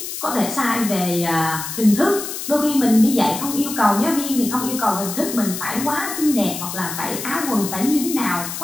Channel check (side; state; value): left; noise; hiss, 7 dB below the sound